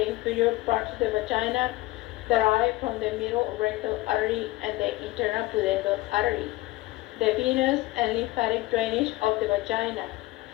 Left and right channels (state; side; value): quieter; right; 18.8 dB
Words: inferior parts of the vagina, derived from the middle rectal artery and the internal pudendal artery. The venous and lymphatic drainage of the vagina.